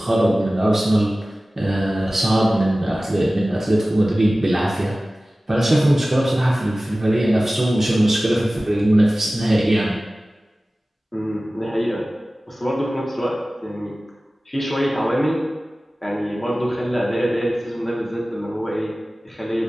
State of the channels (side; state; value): both; normal; correlation 0.97